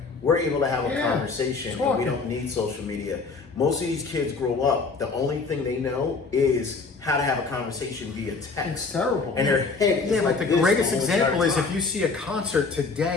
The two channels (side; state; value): right; quieter; 4.3 dB